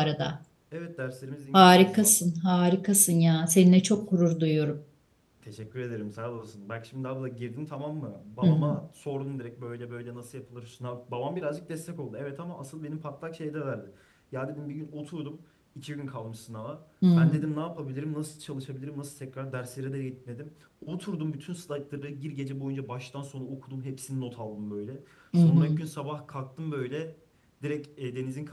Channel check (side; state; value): both; identical; correlation 1.00